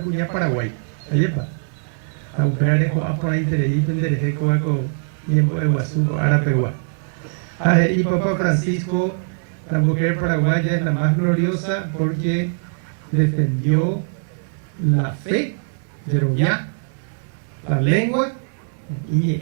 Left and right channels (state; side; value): silent; left; digital silence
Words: Paraguay. Ayepa. A Upearejo, a por ahí Terei, Pendereje, Coaco, Yembo, Eguazuco, Arapegua. Y Papa Francisco, la mujer paraguaya es la más gloriosa porque defendió la fe, Yeroviá, la lengua,